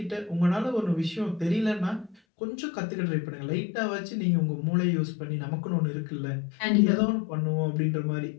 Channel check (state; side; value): drops out; right; at 2.1 s